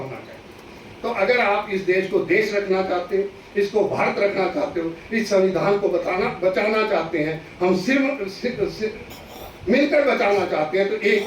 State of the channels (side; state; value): both; identical; correlation 1.00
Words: चाहिए। तो अगर आप इस देश को देश रखना चाहते हैं, इसको भारत रखना चाहते हो, इस संविधान को बचाना चाहते हैं, हम सिर्फ मिलकर बचाना चाहते हैं, तो एक